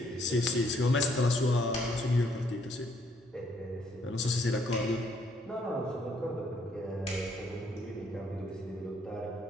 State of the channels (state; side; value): normal; both; correlation 0.68